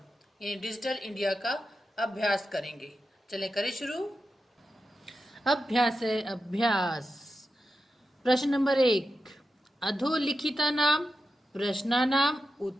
यानी डिजिटल इंडिया का अभ्यास करेंगे। चलें करें शुरू। अभ्यास है अभ्यास। प्रश्न नंबर 1। अधोलिखितानां प्रश्नानां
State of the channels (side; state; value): both; normal; correlation 0.90